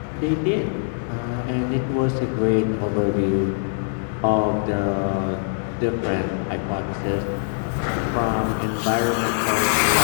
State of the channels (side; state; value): right; silent; digital silence